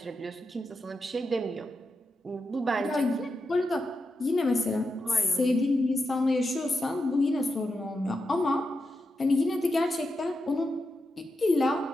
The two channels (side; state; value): both; normal; correlation 0.87